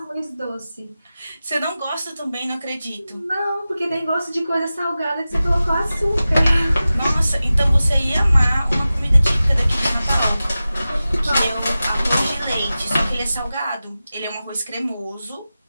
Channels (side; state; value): both; inverted; correlation -0.95